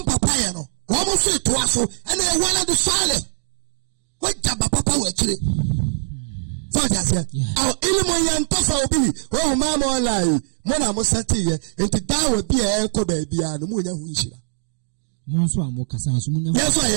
papa ye no wo mo so to aso ene e wala do sale waja papa wo chire so just here aw ilmu yantafa obi wo ma mo online mo na mo sati ye enti dawo bi e ko ba bia no mo nya hu nshira mo so amo kasa so mo nya yes so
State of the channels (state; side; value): silent; left; 65 dB below the other